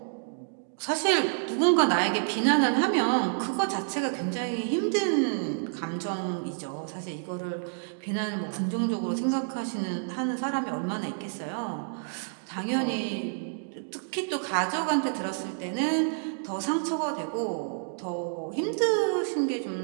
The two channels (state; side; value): silent; left; digital silence